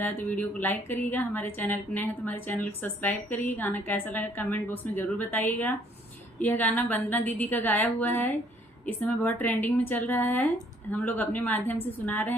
आए तो वीडियो को लाइक करिएगा। हमारे चैनल पर नए हैं तो हमारे चैनल को सब्सक्राइब करिए। गाना कैसा लगा कमेंट बॉक्स में ज़रूर बताइएगा। यह गाना वंदना दीदी का गाया हुआ है, इस समय बहुत ट्रेंडिंग में चल रहा है। हम लोग अपने माध्यम से सुना रहे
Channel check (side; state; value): both; normal; correlation 0.63